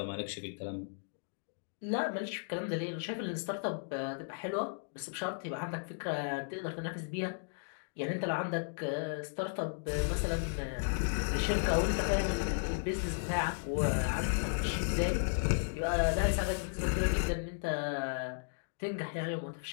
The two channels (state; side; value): silent; right; digital silence